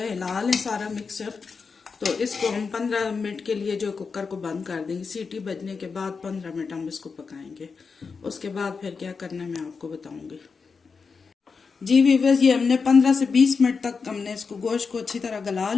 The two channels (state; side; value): quieter; right; 5.1 dB